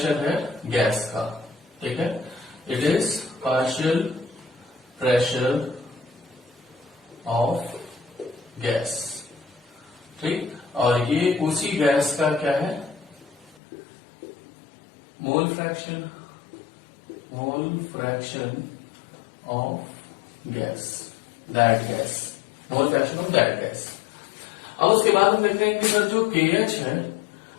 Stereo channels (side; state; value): right; drops out; at 13.6 s